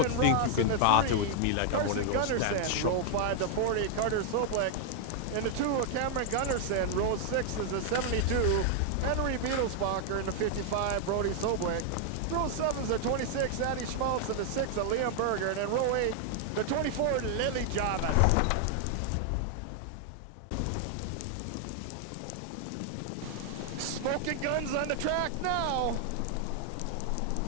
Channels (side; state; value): both; different; correlation 0.00